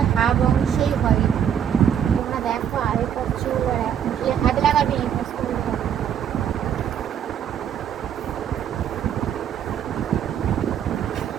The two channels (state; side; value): quieter; left; 9.0 dB